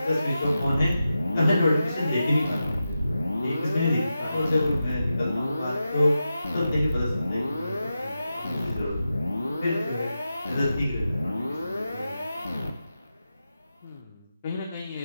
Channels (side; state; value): both; inverted; correlation -0.91